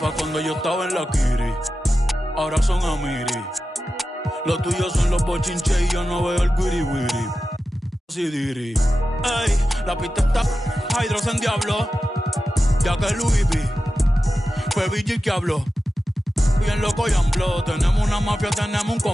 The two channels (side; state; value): both; normal; correlation 0.93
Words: cuando yo estaba en la Kiri, ahora son Amiri. Los tuyos son los bochinches y yo no veo el wiri wiri. Si diri. Ey, la pista está Hydros en diablo, ya que Louis V fue Vigil que habló. Bien loco y ambló, tenemos una mafia, tenemos un